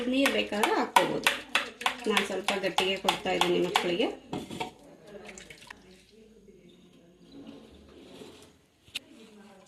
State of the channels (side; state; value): both; identical; correlation 1.00